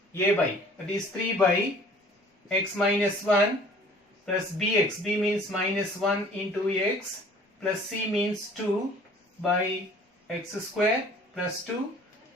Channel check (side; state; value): both; normal; correlation 0.51